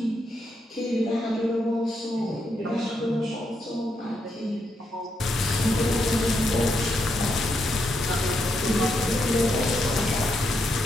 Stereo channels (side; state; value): both; normal; correlation 0.81